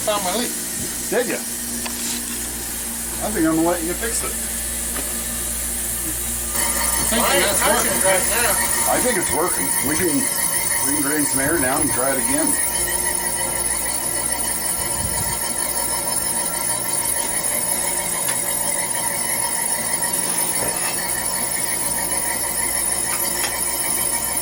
my leak. Did you? I think I'm gonna let you fix it. I think that's working right now. I think it's working. We can drain some air down and try it again.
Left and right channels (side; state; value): both; identical; correlation 1.00